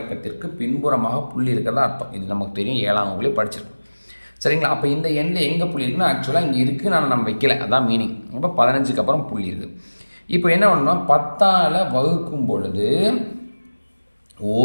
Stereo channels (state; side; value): inverted; both; correlation -1.00